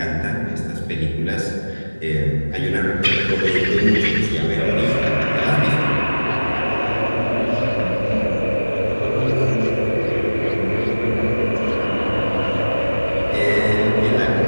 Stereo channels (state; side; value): inverted; both; correlation -1.00